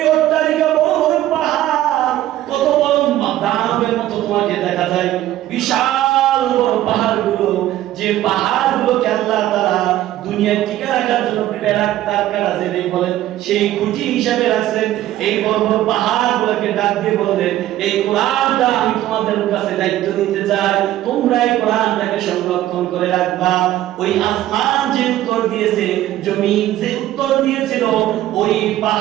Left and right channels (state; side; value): quieter; left; 13.8 dB